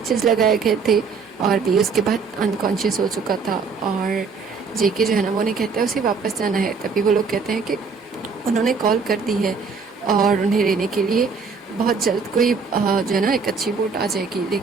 लगाए गए थे और भी उसके बाद अनकॉन्शियस हो चुका था। और जेके जो है ना वो उन्हें कहता है उसे वापस जाना है। तभी वो लोग कहते हैं कि उन्होंने कॉल कर दी है और उन्हें लेने के लिए बहुत जल्द कोई जो है ना एक अच्छी बोट आ जाएगी,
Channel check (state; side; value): quieter; left; 5.1 dB